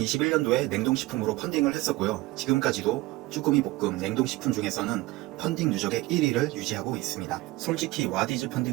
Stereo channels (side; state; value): left; quieter; 19.8 dB